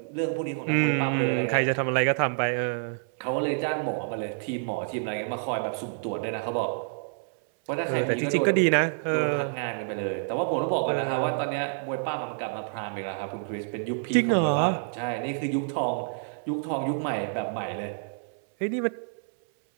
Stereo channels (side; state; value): left; silent; 59 dB below the other